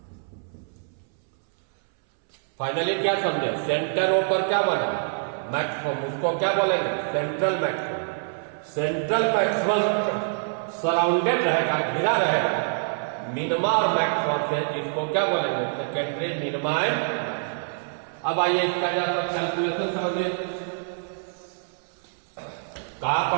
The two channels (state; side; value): silent; left; 61 dB below the other